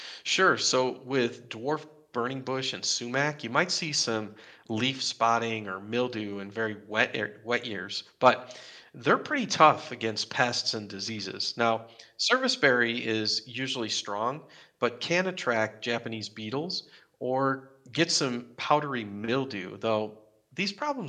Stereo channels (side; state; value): both; identical; correlation 1.00